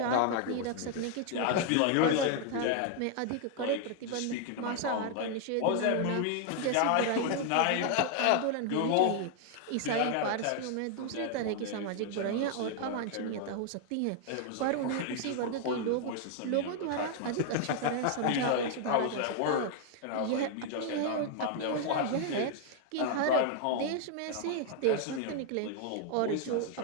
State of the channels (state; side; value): different; both; correlation 0.00